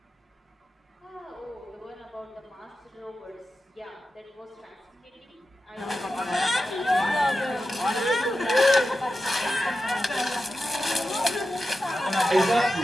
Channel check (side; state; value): both; normal; correlation 0.92